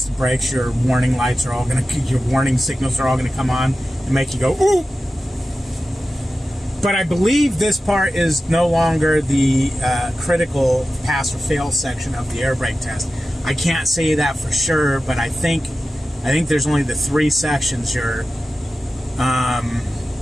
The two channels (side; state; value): both; normal; correlation 0.93